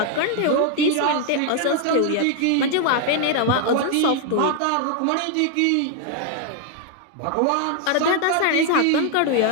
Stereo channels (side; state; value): both; different; correlation 0.00